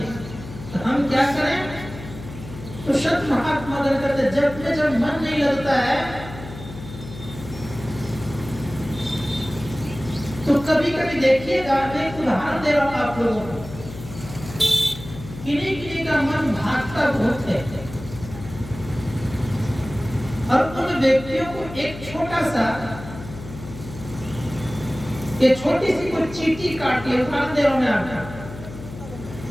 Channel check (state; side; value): noise; left; hum, 13 dB below the sound